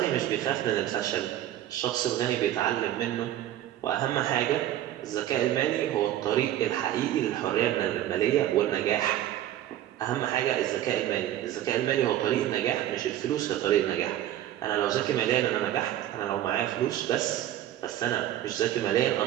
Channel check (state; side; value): quieter; left; 12.7 dB